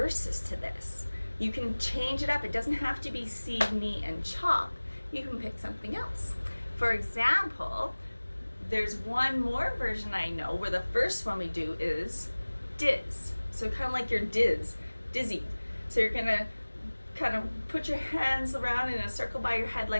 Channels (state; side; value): inverted; both; correlation -1.00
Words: to this. You can change it up. It doesn't have to be see, knee, and chop. You can pick something else. For example, there's one more version I know where the first one we do is diz. So kind of like your dizzy. So you're gonna kind of put your hands around in a circle by your head